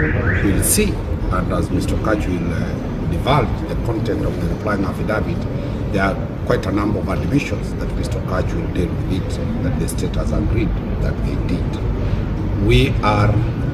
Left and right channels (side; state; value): both; identical; correlation 1.00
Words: will see, and as Mr. Gaucho will divulge the content of the replying affidavit, there are quite a number of admissions that Mr. Gaucho will deal with it, that the state has agreed that they did. We are